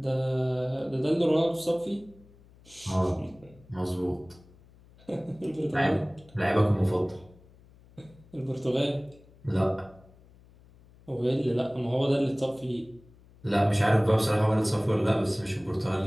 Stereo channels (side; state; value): left; noise; hum, 26 dB below the sound